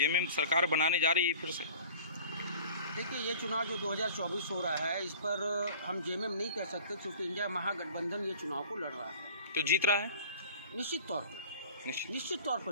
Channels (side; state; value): both; inverted; correlation -0.44